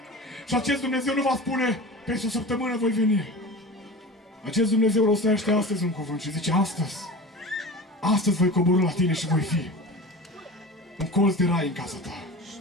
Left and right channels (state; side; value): normal; both; correlation 0.33